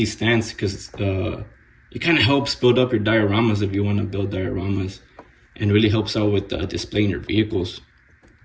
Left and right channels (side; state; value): both; identical; correlation 1.00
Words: stands because it kind of helps build up your dioramas if you want to build dioramas, and really helps out with displaying your vehicles.